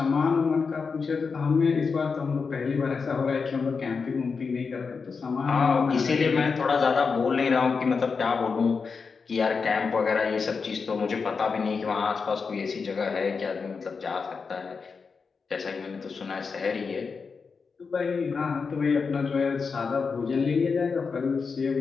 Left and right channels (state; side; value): quieter; right; 5.1 dB